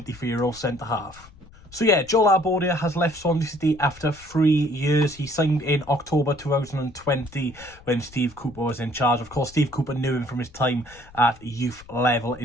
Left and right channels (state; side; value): noise; left; rumble, 22 dB below the sound